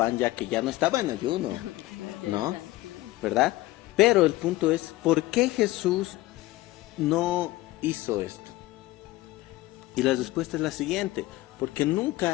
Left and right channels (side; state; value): right; quieter; 18.3 dB